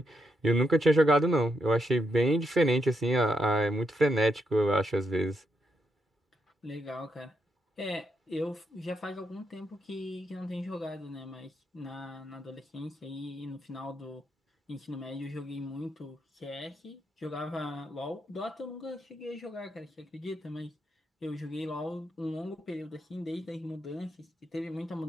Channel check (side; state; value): both; normal; correlation 0.81